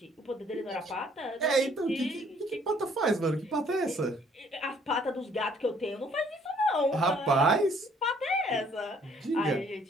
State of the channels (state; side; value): normal; both; correlation 0.62